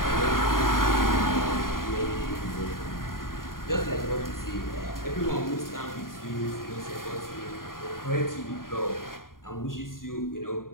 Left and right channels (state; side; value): late; right; 0.91 ms